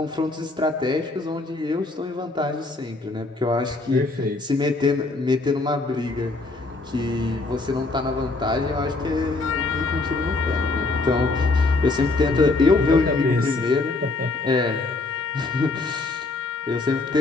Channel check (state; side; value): quieter; right; 3.3 dB